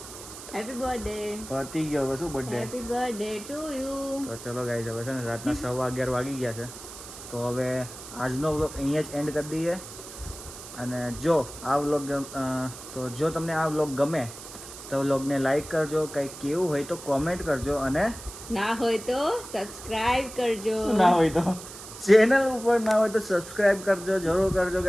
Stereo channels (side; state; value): right; noise; hiss, 13 dB below the sound